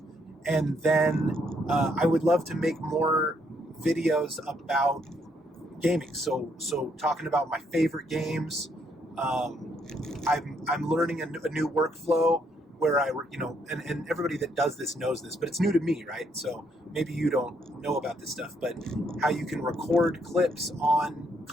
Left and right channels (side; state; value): both; normal; correlation 0.72